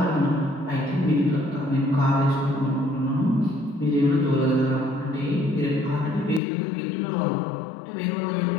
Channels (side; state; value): right; drops out; at 6.4 s